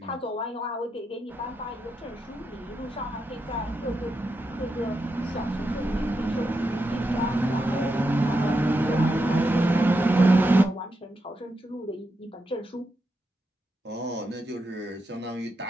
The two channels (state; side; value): normal; both; correlation 0.85